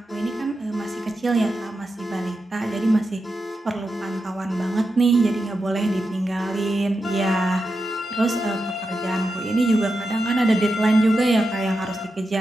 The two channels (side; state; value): both; normal; correlation 0.88